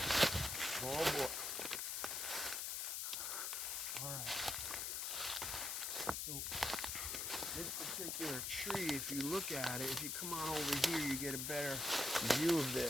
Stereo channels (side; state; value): left; noise; hiss, 1 dB below the sound